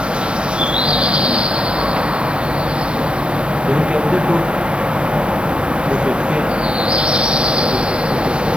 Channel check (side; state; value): left; late; 0.057 ms